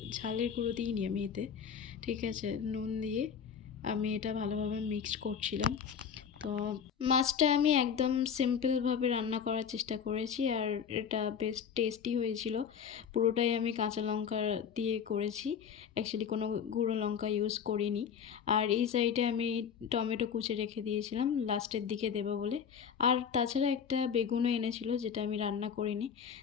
ঝালের গুঁড়ো দিইনি আমি এতে, ঠিক আছে, নুন দিয়ে আমি এটা ভালোভাবে মিক্সড করছিলাম। তো মাছটা আমি একদম সিম্পলভাবে রান্না করার চেষ্টা করেছি, আর এটা বেশ টেস্টি হয়েছিল। পুরোটাই আমি কাঁচা লঙ্কা দিয়ে করেছি, অ্যাকচুয়ালি কোনো গুঁড়ো লঙ্কা ইউজ করিনি। আর এই সাইডে আমি টমেটো কুচি রেখে দিয়েছিলাম লাস্টের দিকে দেবো বলে। আর তাছাড়া একটা বেগুনও এনেছিল, যেটা আমি রান্না করিনি।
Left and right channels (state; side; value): quieter; right; 7.4 dB